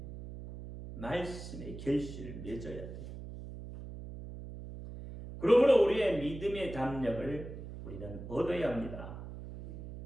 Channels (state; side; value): noise; right; hum, 11 dB below the sound